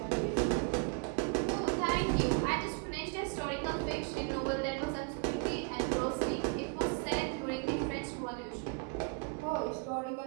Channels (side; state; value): left; quieter; 32.5 dB